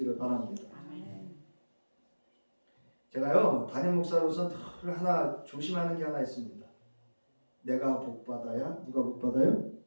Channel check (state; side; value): inverted; both; correlation -1.00